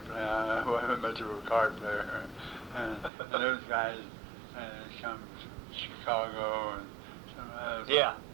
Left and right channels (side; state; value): left; drops out; at 3.1 s